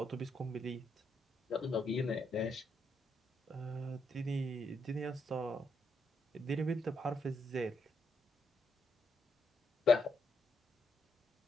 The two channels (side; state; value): both; normal; correlation 0.78